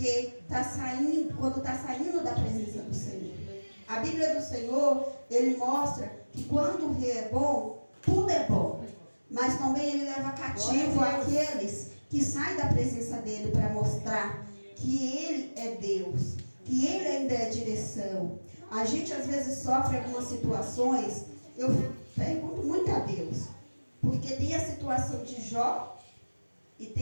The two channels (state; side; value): inverted; both; correlation -1.00